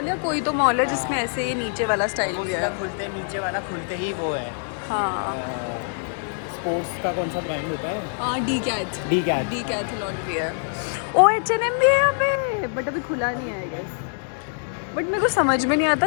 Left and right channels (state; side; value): silent; right; digital silence